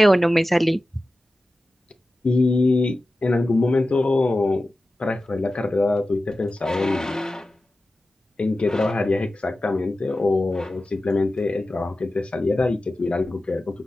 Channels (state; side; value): normal; both; correlation 0.95